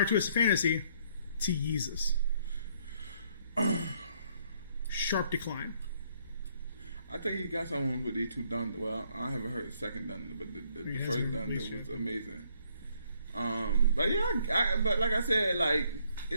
Twisted Fantasy to Yeezus? Sharp decline. I think he got someone with these two Dunder. Well, I haven't heard the second Dunder, but the first Dunder was amazing. But yeah, but like I said,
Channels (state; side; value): inverted; both; correlation -0.68